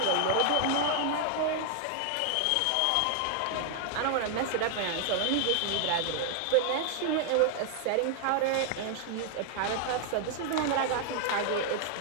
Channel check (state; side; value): different; both; correlation 0.00